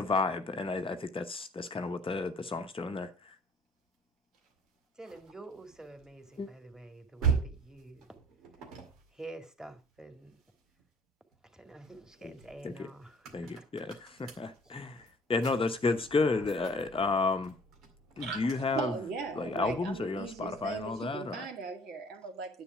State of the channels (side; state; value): both; normal; correlation 0.54